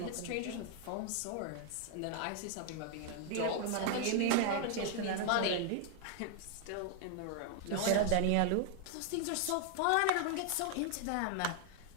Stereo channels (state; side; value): different; both; correlation 0.00